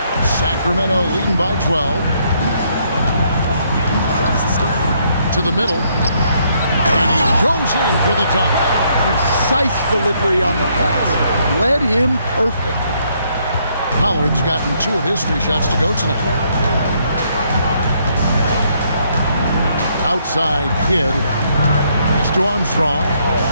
Sacramento leading by 12. To the middle. And he goes in for the dunk. Precise delivery on the pass. Led him perfectly. Pollard's gotten 2 of his 3 shots to go tonight. Outside Kidd. Pass to Armstrong.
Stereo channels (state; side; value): inverted; both; correlation -0.71